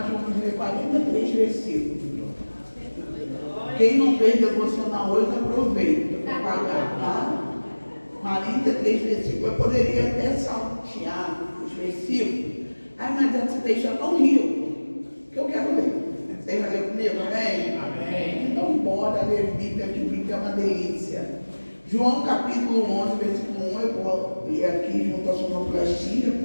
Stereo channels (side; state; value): both; inverted; correlation -1.00